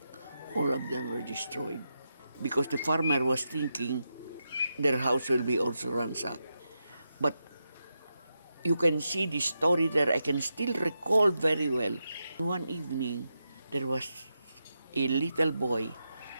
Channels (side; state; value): both; inverted; correlation -0.87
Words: All of them were destroyed because the farmer was thinking their house will be also ransacked. But you can see the story there. I can still recall very well. One evening, there was a little boy